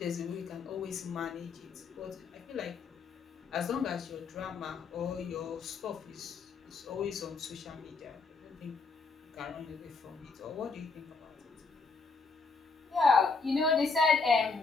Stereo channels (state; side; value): quieter; right; 4.4 dB